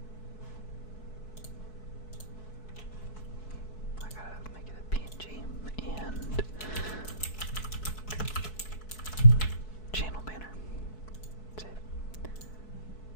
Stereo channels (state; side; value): late; right; 4.6 ms